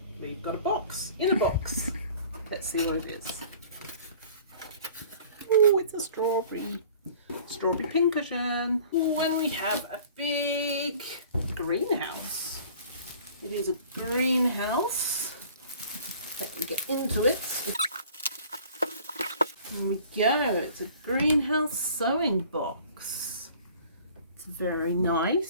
We've got a box, in a box. Let's see what it is. Oh, it's a strawberry pincushion. Oh, and we have a big greenhouse. It is a greenhouse. Let me get into it. There we go. It's a greenhouse sewing box. It's very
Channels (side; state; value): both; inverted; correlation -0.49